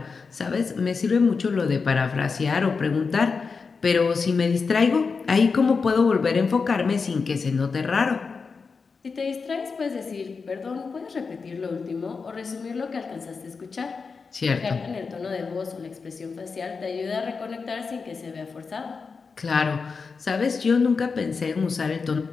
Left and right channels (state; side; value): quieter; right; 4.9 dB